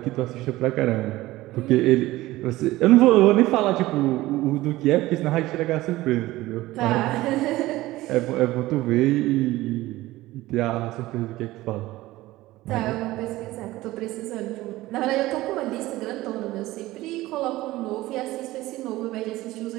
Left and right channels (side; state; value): left; quieter; 17.6 dB